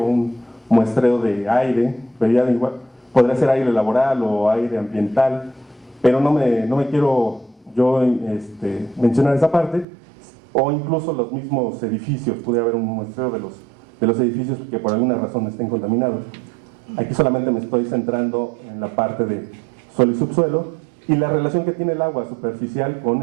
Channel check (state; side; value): drops out; left; at 9.9 s